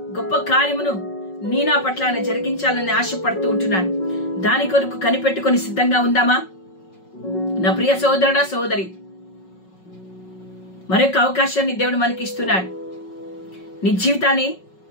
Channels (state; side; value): late; right; 5.4 ms